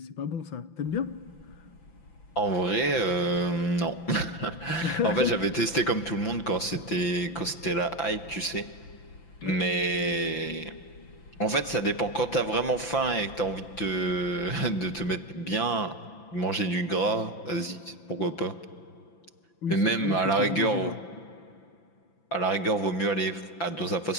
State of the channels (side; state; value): right; late; 5.9 ms